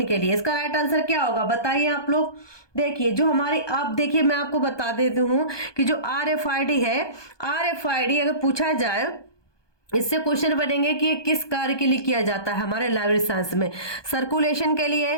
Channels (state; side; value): late; right; 1.2 ms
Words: के लिए। इसका राइट आंसर क्या होगा बताइए आप लोग। देखिए जो हमारी, आप देखिए मैं आपको बता देती हूँ कि जो RFID है, RFID अगर पूछा जाए, इससे क्वेश्चन बनेंगे कि ये किस कार्य के लिए किया जाता है हमारे लाइब्रेरी साइंस में, सर्कुलेशन के